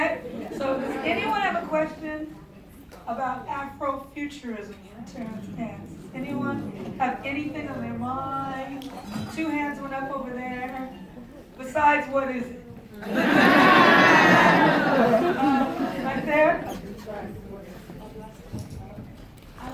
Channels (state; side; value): identical; both; correlation 1.00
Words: So does anyone have a question about Afrofuturism in Terence Nance? Anyone have anything on their mind? 2 hands went up over there. Besides, what is it? Right there?